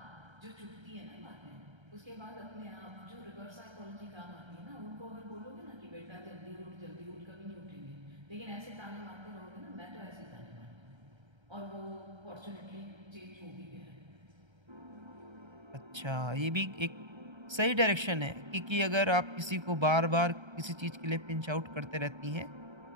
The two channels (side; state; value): left; late; 1.3 ms